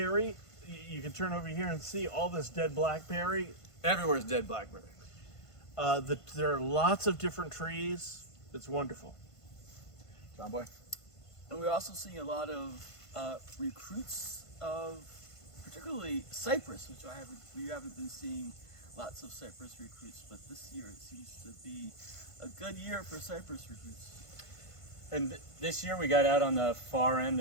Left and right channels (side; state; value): right; late; 1.5 ms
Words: you can turn over here and see all this dead blackberry. Everywhere's dead blackberry. There are lots of different trees. It's wonderful. John Boy? And we're also seeing a lot of recruits of particularly cypress, which we haven't been seeing lots of cypress recruits, but this year it seems to be a good year for cypress recruits. And this year we got out on the far end